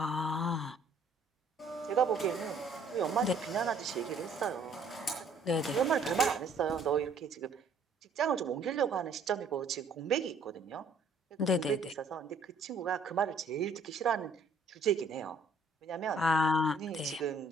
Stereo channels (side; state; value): left; quieter; 3.2 dB